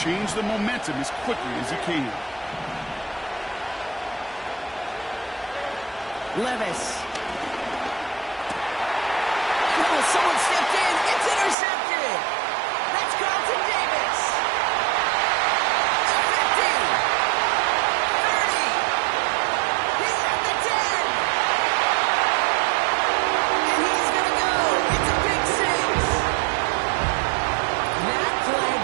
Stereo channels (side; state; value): left; drops out; at 11.6 s